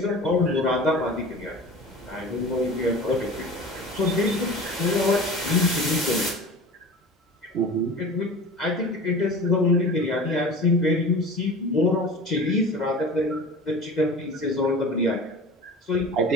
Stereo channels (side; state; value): both; normal; correlation 0.37